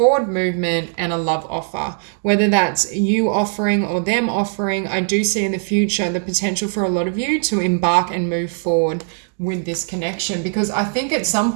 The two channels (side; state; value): left; silent; 60 dB below the other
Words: movement and a love offer. Whether that's you offering or them offering, I do see in the future the potential for a lot of you to embark and move forward with this connection, because I think at some